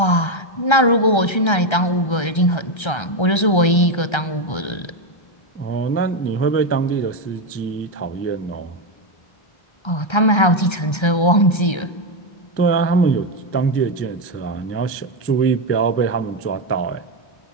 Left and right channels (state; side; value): late; right; 1.3 ms